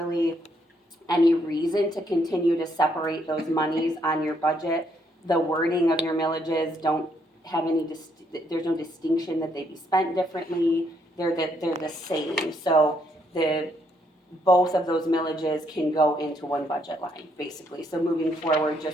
any reason to continue to separate those monies on your budget. The wording of your millages don't have any, there's no distinction that they be spent differently. They're the same. So both of those millages can go into one budget line, basically. So moving forward,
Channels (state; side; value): normal; both; correlation 0.73